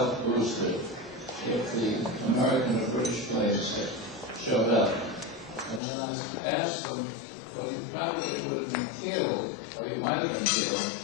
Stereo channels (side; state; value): right; drops out; at 5.8 s